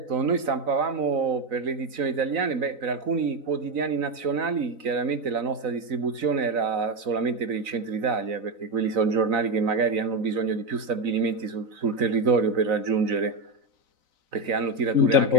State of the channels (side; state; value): left; late; 4.0 ms